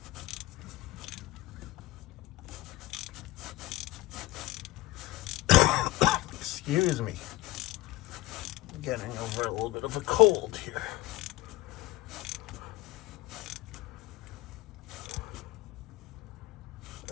Excuse me. I'm getting over a little bit of a cold here.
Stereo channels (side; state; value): right; quieter; 18.2 dB